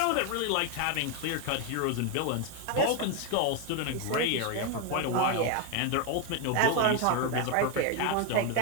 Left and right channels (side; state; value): both; different; correlation 0.01